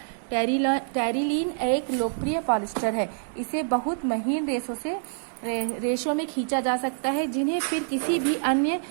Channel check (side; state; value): left; silent; digital silence